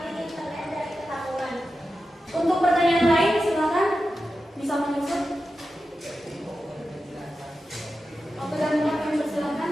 internet dari Ketanggungan? Untuk pertanyaan lain silakan bisa menyusun. Oke, dan kami persilakan.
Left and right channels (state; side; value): normal; both; correlation 0.91